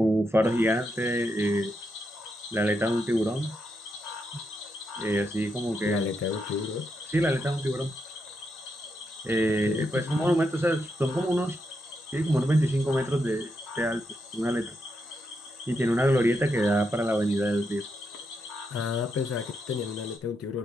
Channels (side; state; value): both; normal; correlation 0.83